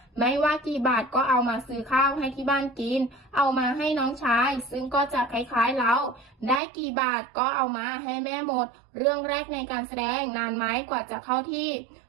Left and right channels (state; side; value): drops out; left; at 6.6 s